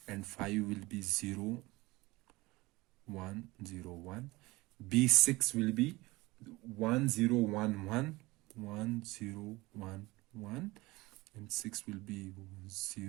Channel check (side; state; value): left; quieter; 21.3 dB